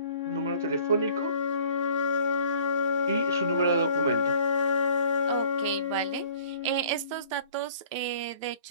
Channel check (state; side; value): inverted; both; correlation -0.52